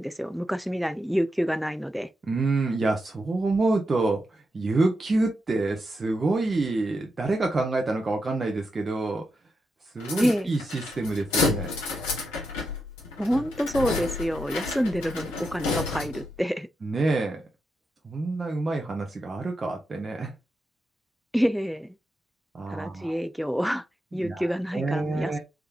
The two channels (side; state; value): both; normal; correlation 0.86